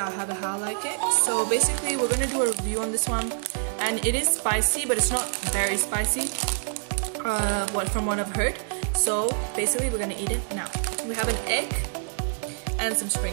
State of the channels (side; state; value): left; silent; digital silence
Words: I have it how I like it. So basically we're gonna do a review on this one, and it is spicy but it's not very spicy from what I've heard. So basically we're gonna eat it now. We have an egg and some